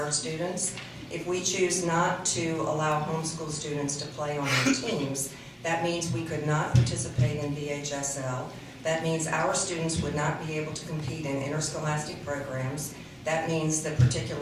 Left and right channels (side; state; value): both; identical; correlation 1.00